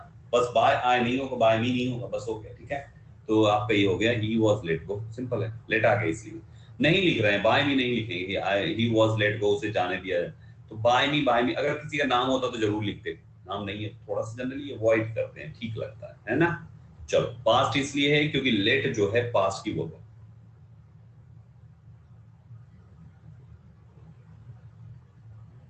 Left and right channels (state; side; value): identical; both; correlation 1.00